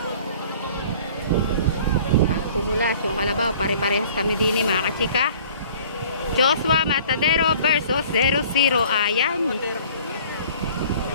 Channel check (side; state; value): both; inverted; correlation -0.50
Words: Pumulas yung kalabaw, pare-parehas kami din mga kachika. Joshua Matadero versus 00. Ayan.